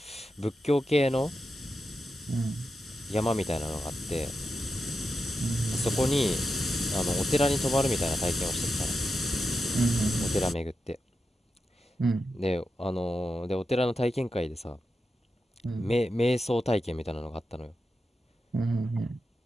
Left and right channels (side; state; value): both; normal; correlation 0.89